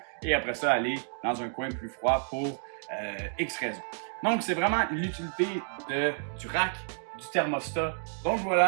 et après ça aller dans un coin plus froid pour X raisons. Donc c'est vraiment l'utilité du rack, du thermostat. Donc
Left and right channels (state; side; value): silent; left; digital silence